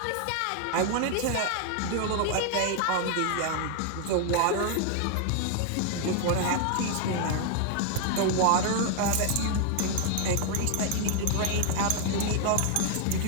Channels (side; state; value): both; different; correlation 0.00